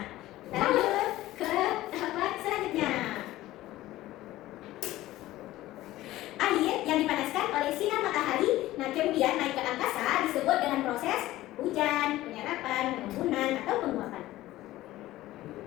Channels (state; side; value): quieter; right; 16.1 dB